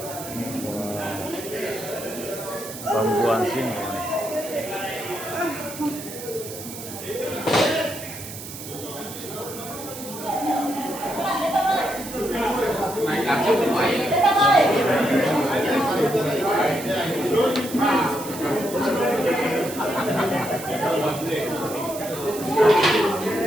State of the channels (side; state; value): right; noise; hiss, 11 dB below the sound